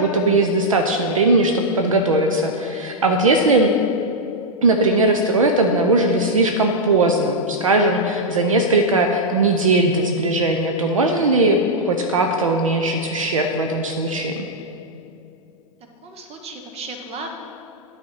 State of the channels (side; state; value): both; normal; correlation -0.06